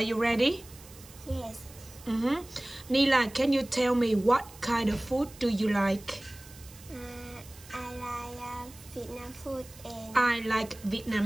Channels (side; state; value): right; noise; hiss, 20 dB below the sound